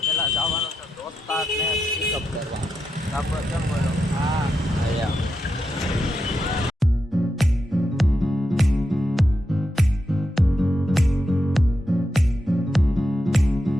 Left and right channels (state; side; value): normal; both; correlation 0.86